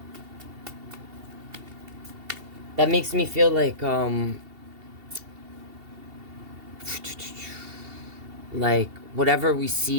That makes me feel like whatever we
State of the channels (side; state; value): left; late; 2.7 ms